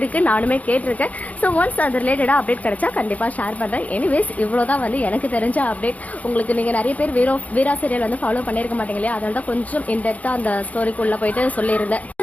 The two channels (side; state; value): right; late; 0.071 ms